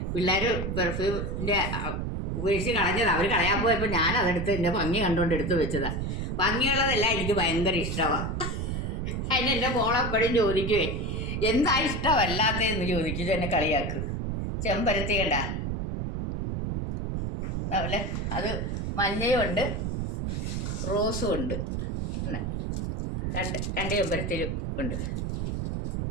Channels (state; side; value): noise; right; rumble, 2 dB below the sound